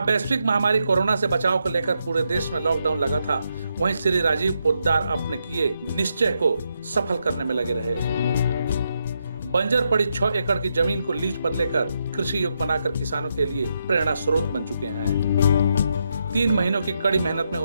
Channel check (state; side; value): inverted; both; correlation -0.81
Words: वैश्विक महामारी कोरोना से बचाव को लेकर पूरे देश में लॉकडाउन लगा था, वहीं श्री राजीव पोद्दार अपने किए निश्चय को सफल करने में लगे रहे। बंजर पड़ी 6 एकड़ की जमीन को लीज पर लेकर कृषि योग्य बनाकर किसानों के लिए प्रेरणा स्रोत बन चुके हैं। 3 महीनों की कड़ी मेहनत में